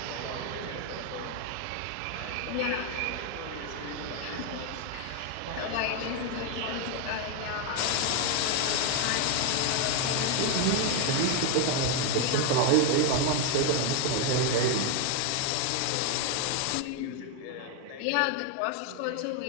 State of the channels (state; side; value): different; both; correlation 0.01